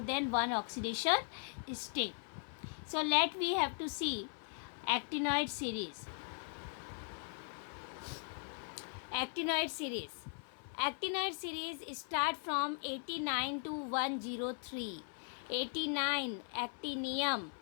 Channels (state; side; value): silent; right; 52 dB below the other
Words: one oxidation state. So we have to see actinoid series. Actinoid series. Actinoid series start from 89 to 103. 89 actinium,